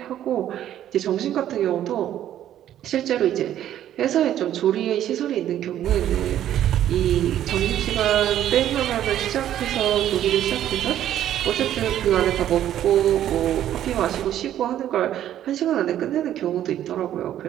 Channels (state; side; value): quieter; left; 11.5 dB